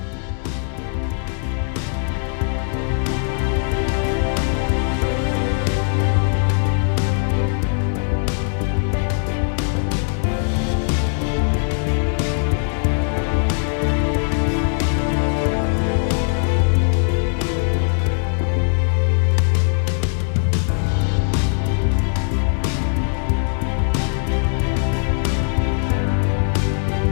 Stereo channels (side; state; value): right; silent; digital silence